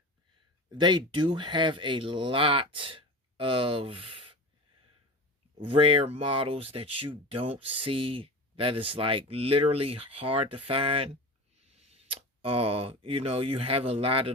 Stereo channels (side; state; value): both; normal; correlation 0.30